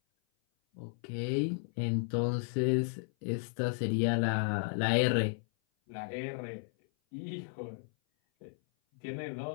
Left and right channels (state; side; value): silent; right; 55 dB below the other